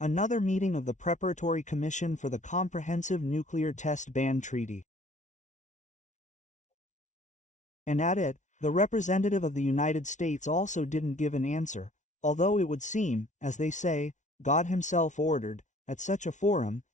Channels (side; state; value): right; late; 0.36 ms